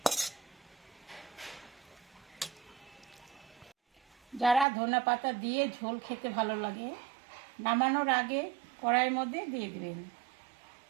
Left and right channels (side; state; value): left; drops out; at 4.7 s